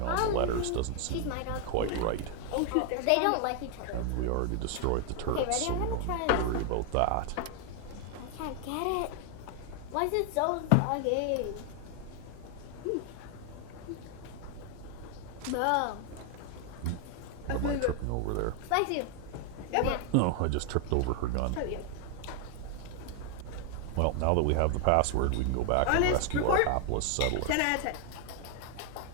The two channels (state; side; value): different; both; correlation 0.00